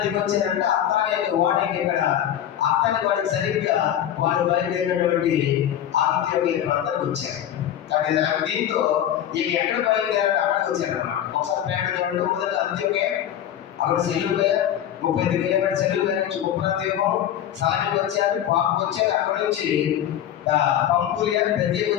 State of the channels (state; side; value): quieter; right; 10.7 dB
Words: దిగొచ్చారంటే అత్తానే వాడికి ఇక్కడ అత్తానే వాడికి సరిగ్గా వాడు బయలుదేరినటువంటి అంత్యోక ప్రాంతానికి వచ్చారు. కాబట్టి దీంతో ఇక ఎక్కడ బయలుదేరారు? అక్కడికి వచ్చారు అనమాట. ఒకసారి ప్రయాణం చూడండి. మొదట అంత్యోక, అక్కడ సెల్లుగా 35 కిలోమీటర్ సెల్లుగా నుంచి ఉప్రాంతీపం సాయంకి వచ్చారు. పాపకు వచ్చారు. అక్కడ నుంచి పంఫూలియా పెర్గేకి